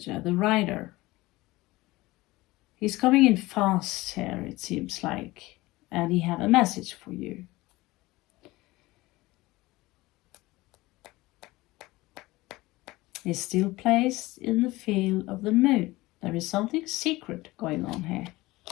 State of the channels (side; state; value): right; quieter; 19.8 dB